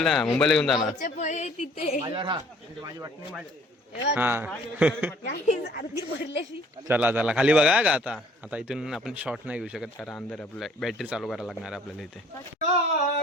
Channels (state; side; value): normal; both; correlation 0.56